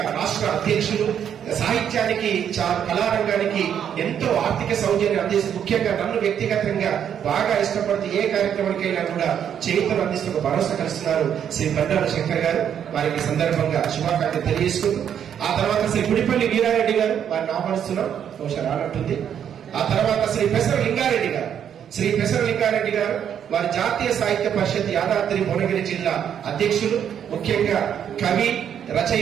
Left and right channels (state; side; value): quieter; left; 8.9 dB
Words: రాష్ట్ర అధ్యక్షులు. సాహిత్యానికి, కళారంగానికి ఎంతో ఆర్థిక సౌజన్యం అందిస్తూ, ముఖ్యంగా నన్ను వ్యక్తిగతంగా బాగా ఇష్టపడుతూ ఏ కార్యక్రమానికైనా కూడా చేతులు అందిస్తూ ఒక భరోసా కలుస్తున్నారు శ్రీ బండారు శంకర్ గారు. వారికి సందర్భంగా శుభాకాంక్షలు తెలియజేసుకుంటూ, ఆ తర్వాత శ్రీ గుడిపల్లి వీరారెడ్డి గారు, వారిని ఆహ్వానిస్తున్నాం, బహుశా రానట్టుంది. ఆ తర్వాత శ్రీ పెసర లింగారెడ్డి గారు. శ్రీ పెసర లింగారెడ్డి గారు వారి జాతీయ సాహిత్య పరిషత్ యాదాద్రి భువనగిరి జిల్లా అధ్యక్షులు. ముఖ్యంగా కవి,